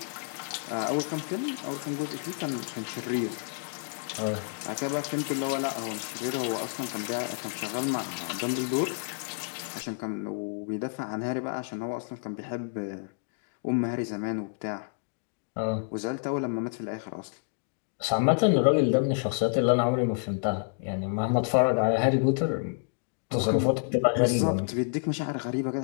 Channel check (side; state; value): right; silent; digital silence